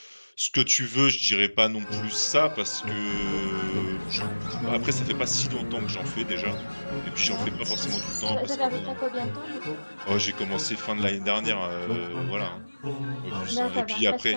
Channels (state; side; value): inverted; both; correlation -1.00